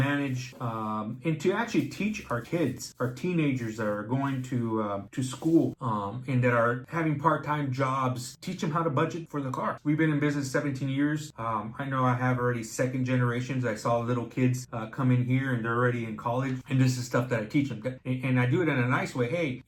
and to actually teach our kids, our teenagers that are going to school and that are having part-time jobs, teach them how to budget for the car. We've been in business 17 years. I know I have already second generations. I saw little kids come in here and they're already in college, and this is stuff that I teach them. And I do it in a nice way. Hey,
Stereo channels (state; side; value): identical; both; correlation 1.00